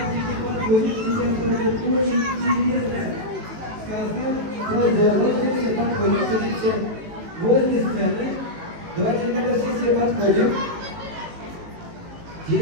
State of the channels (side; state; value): left; late; 18 ms